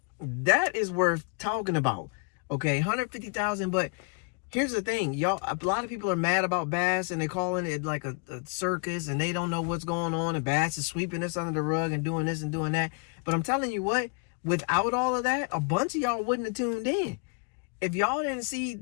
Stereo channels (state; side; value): quieter; right; 35.4 dB